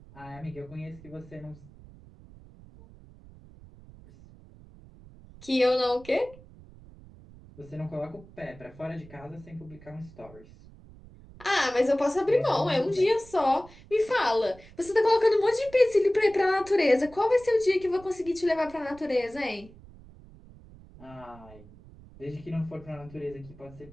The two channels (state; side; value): noise; right; rumble, 21 dB below the sound